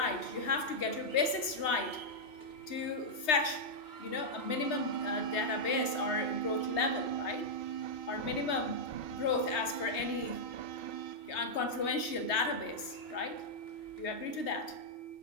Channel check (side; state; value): right; late; 3.3 ms